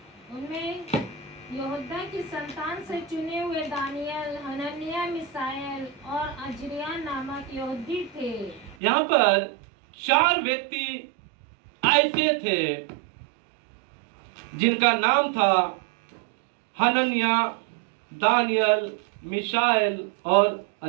उनमें यहोदा की संतान से चुने हुए दानियल, हनन्याह, मिसाएल और अजरिया नामक यहूदी थे। यहाँ पर 4 व्यक्ति ऐसे थे जिनका नाम था हनन्याह, दानियल, मिशाएल और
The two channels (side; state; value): left; drops out; at 8.8 s